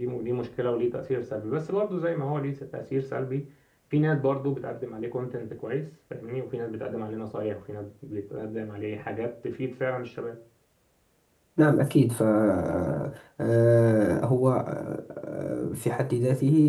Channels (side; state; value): both; identical; correlation 1.00